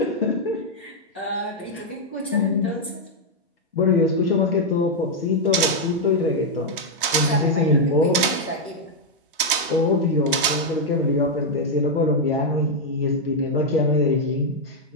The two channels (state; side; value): normal; both; correlation -0.01